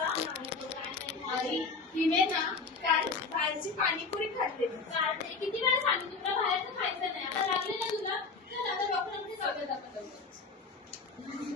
आई तिने ना काल बाहेरची पाणीपुरी खाल्ली. किती वेळा सांगितलं तुला बाहेरचं खायचं नाही. आता लागले ना तुला, तर आता डॉक्टरांकडे जाऊया आपण.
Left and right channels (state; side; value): quieter; right; 4.5 dB